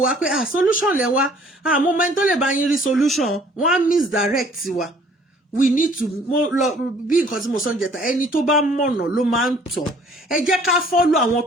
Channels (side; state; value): both; normal; correlation 0.57